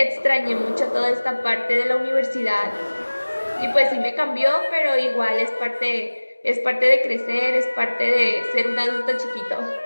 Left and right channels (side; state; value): both; inverted; correlation -1.00